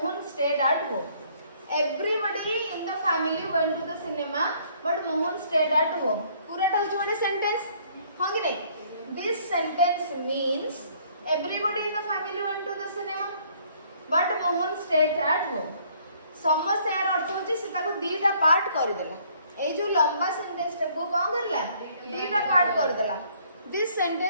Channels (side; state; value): both; inverted; correlation -0.62